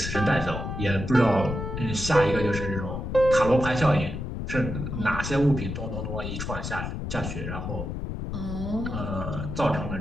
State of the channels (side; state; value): left; noise; rumble, 5 dB below the sound